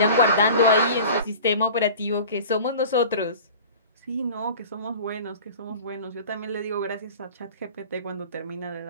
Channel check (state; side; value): inverted; both; correlation -0.40